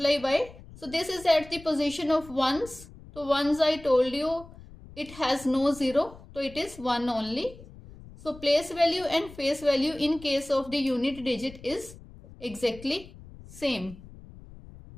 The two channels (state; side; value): noise; left; rumble, 19 dB below the sound